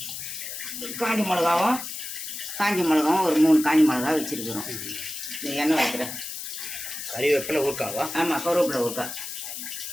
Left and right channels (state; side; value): noise; left; hiss, 7 dB below the sound